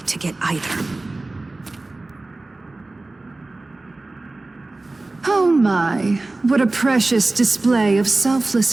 to get either. Oh my, what a precious display of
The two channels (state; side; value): quieter; left; 3.1 dB